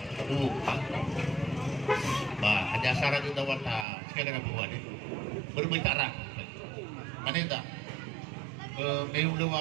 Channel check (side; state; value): left; drops out; at 3.9 s